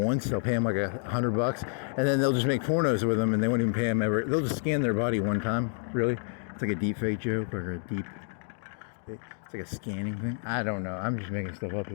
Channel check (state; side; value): silent; right; 59 dB below the other